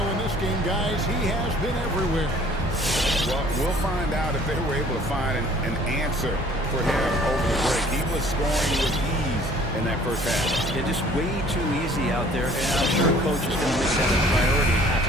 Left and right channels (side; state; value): both; normal; correlation 0.54